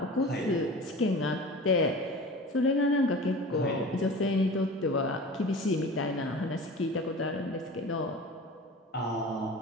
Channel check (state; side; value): normal; both; correlation 0.36